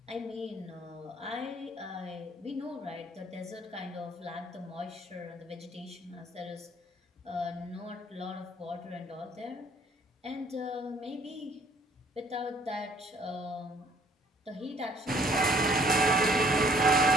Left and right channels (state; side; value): normal; both; correlation 0.60